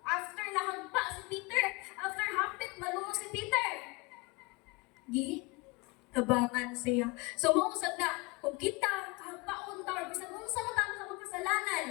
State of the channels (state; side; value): quieter; right; 26.0 dB